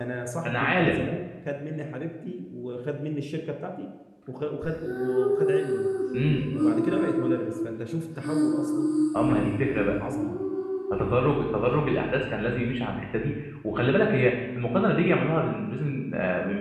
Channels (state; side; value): identical; both; correlation 1.00